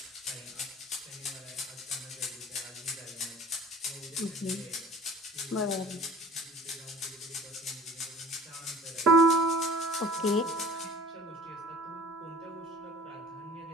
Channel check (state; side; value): normal; both; correlation 0.45